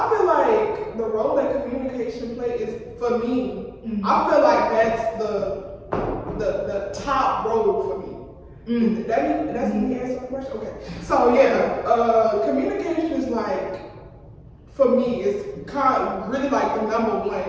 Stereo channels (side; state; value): both; identical; correlation 1.00